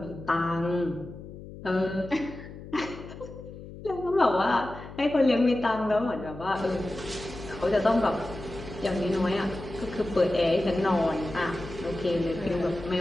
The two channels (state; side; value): noise; left; hum, 14 dB below the sound